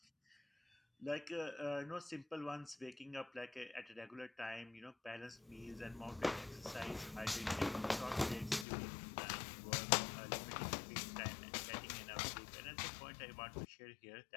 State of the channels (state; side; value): drops out; right; at 8.7 s